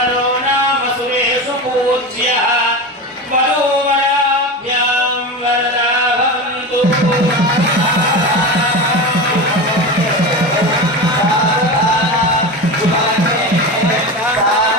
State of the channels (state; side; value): normal; both; correlation 0.24